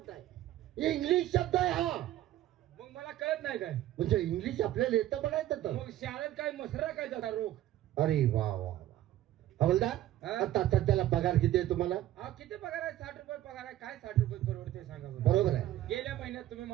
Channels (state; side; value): quieter; left; 13.6 dB